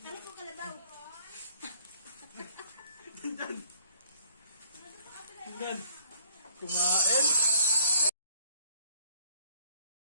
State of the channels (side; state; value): both; inverted; correlation -0.60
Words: Ano po kalabaw? Kumain.